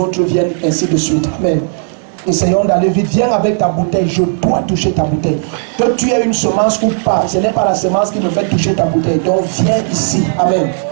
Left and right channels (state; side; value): silent; left; digital silence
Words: viennent ainsi de suite. Amen. Essayons d'aller vite. Viens avec ta bouteille. Je dois toucher ta bouteille. Que tu aies une semence ou pas, ce n'est pas la semence qui me fait toucher ta bouteille. Donc viens ici. Amen.